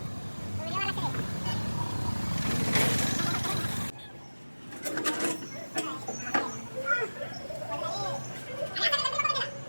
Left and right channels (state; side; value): inverted; both; correlation -1.00